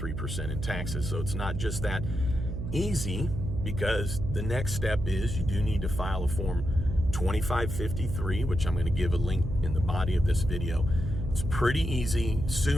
in taxes. So it's not just that easy, because the next step is you do need to file a form 2553, which I'm going to give a link in the body of this video. It's pretty easy.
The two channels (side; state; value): right; noise; hum, 5 dB below the sound